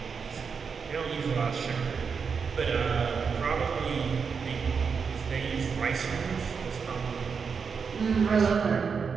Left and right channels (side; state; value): left; quieter; 5.8 dB